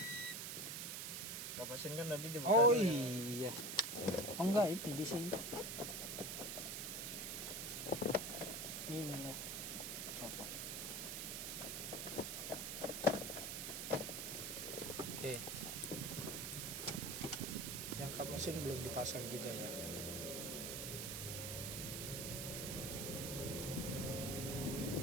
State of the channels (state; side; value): noise; right; hiss, 3 dB below the sound